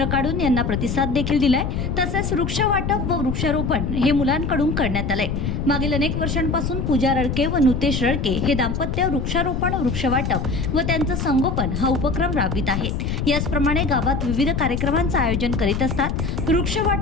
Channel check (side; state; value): left; noise; rumble, 2 dB below the sound